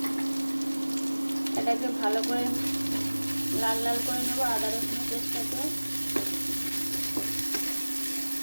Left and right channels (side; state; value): both; inverted; correlation -1.00